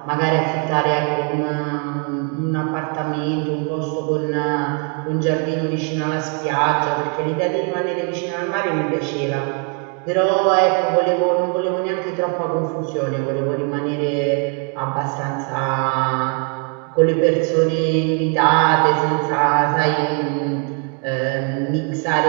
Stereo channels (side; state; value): left; quieter; 36.9 dB